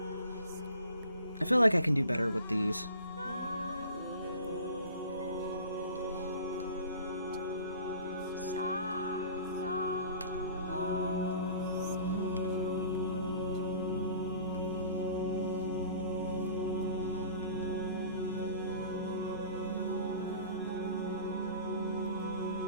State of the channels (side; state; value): both; inverted; correlation -0.45